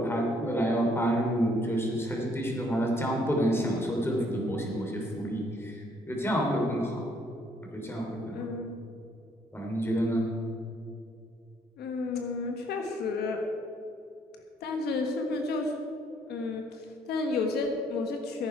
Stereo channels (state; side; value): normal; both; correlation 0.66